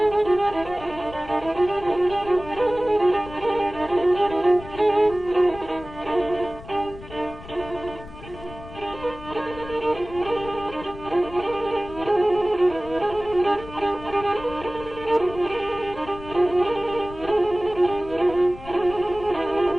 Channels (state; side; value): noise; left; rumble, 16 dB below the sound